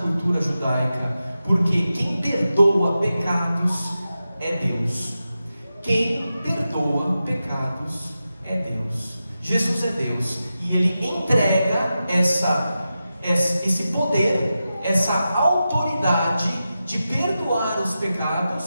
judaica, porque quem perdoa pecados é Deus. Quem perdoa pecados é Deus. Jesus é Deus, e Ele entrega esse poder, essa autoridade de perdoar os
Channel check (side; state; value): both; inverted; correlation -0.91